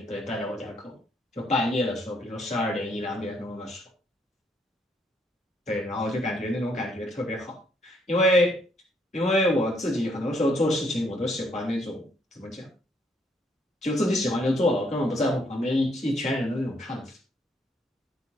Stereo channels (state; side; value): normal; both; correlation 0.70